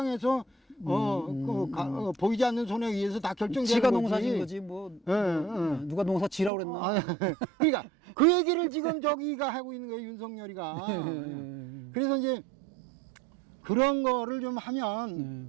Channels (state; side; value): drops out; left; at 6.5 s